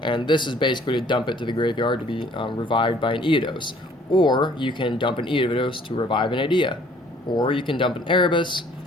and this is basically to dump it to the graveyard to be revived by an Eodos. Or you can dump an Eodos to revive an Idea. Or you can dump an Erebus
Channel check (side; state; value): both; normal; correlation 0.57